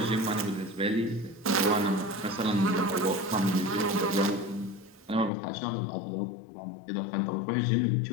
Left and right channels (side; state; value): right; drops out; at 5.3 s